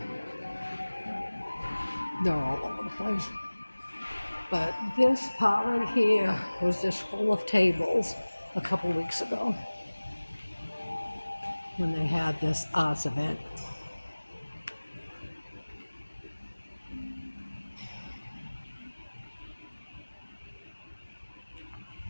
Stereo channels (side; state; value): both; inverted; correlation -1.00